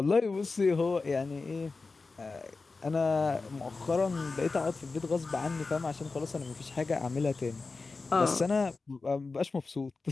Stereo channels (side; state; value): right; quieter; 4.0 dB